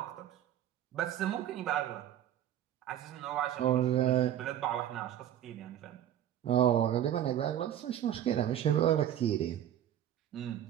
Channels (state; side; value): quieter; left; 11.1 dB